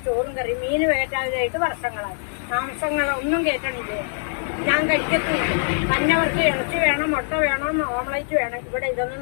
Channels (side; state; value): right; silent; 63 dB below the other